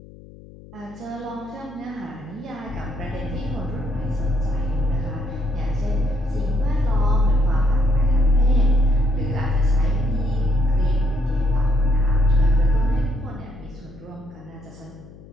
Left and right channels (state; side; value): noise; left; hum, 20 dB below the sound